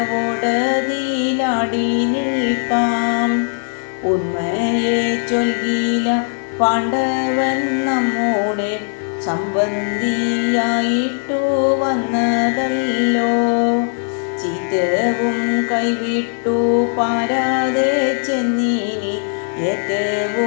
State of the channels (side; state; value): right; silent; digital silence